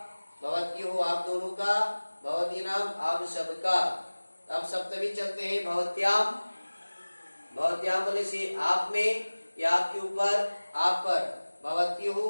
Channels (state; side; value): inverted; both; correlation -1.00